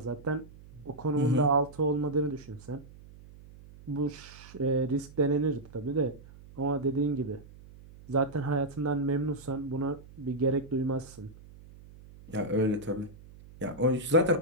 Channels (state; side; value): noise; right; hum, 20 dB below the sound